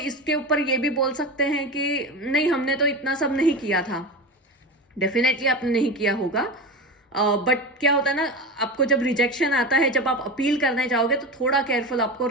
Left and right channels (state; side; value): normal; both; correlation 0.24